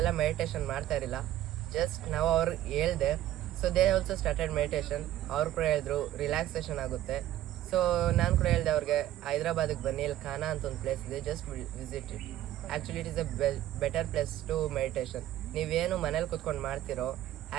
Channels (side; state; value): left; quieter; 13.3 dB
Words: ಮೆಡಿಟೇಷನ್ ಮಾಡ್ತಾ ಇರಲಿಲ್ಲ. ಜಸ್ಟ್ ನಾವು ಅವ್ರಿಗೆ ಹೇಳ್ದೆ, so they also started meditation. ಅವ್ರು ಕೂಡ ಹೇಳಿದ್ರು ರಿಲ್ಯಾಕ್ಸೇಷನ್ ಆಗುತ್ತೆ. ಸೊ ನಾನು ಕೂಡ ಹೇಳಿದೆ ಅವ್ರಿಗೆ, ಹೈದ್ರಾಬಾದಿಗೆ ಬನ್ನಿ, ಇಲ್ಲಿ ಖಾನಾ ಅಂತ ಒಂದು ಪ್ಲೇಸ್ ಇದೆ, just visit it. Actually it is a better place to meditation. ನೀವೇನು ಮನೇಲಿ ಕೂತ್ಕೊಂಡು ಮಾಡ್ತಿರೋ,